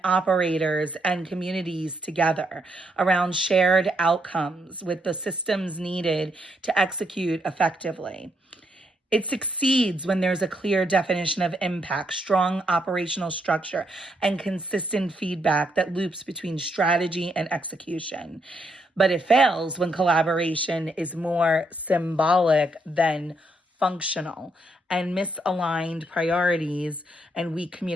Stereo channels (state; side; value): normal; both; correlation 0.76